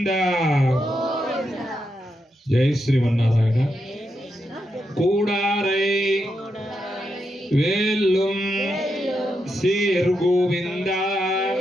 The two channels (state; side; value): normal; both; correlation 0.84